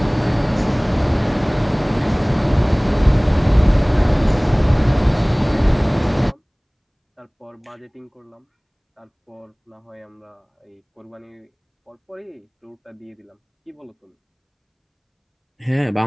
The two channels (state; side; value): identical; both; correlation 1.00